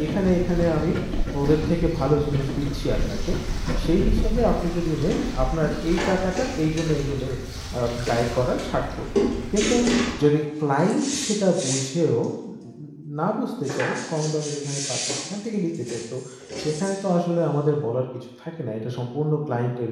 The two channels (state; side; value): identical; both; correlation 1.00